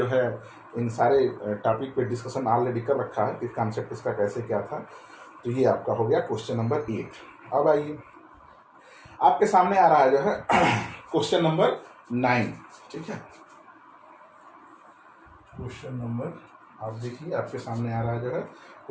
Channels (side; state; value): both; identical; correlation 1.00